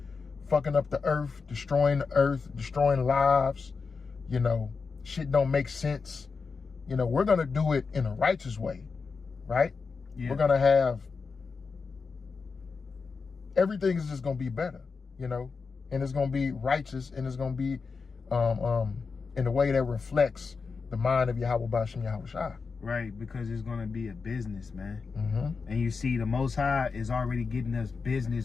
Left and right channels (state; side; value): quieter; right; 4.9 dB